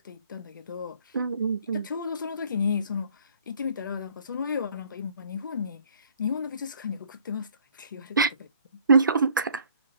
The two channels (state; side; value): inverted; both; correlation -0.59